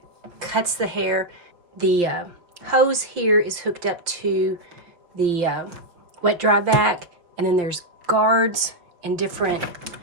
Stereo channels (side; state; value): left; late; 5.8 ms